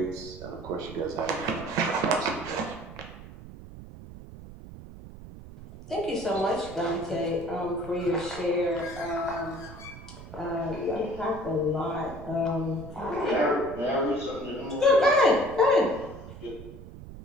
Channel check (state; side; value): noise; right; rumble, 14 dB below the sound